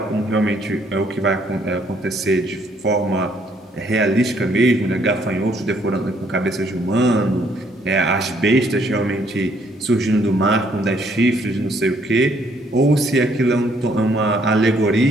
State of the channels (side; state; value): both; normal; correlation 0.67